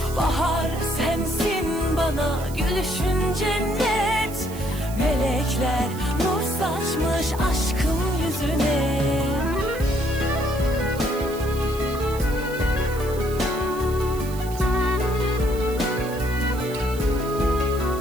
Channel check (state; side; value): noise; right; hiss, 16 dB below the sound